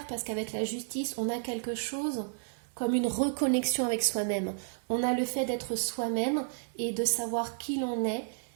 parce qu'avec la justice, on a quelque chose comme une reconnexion avec soi-même. On a le fait d'être soi-même et de savoir qui l'on est,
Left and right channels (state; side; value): silent; left; 56 dB below the other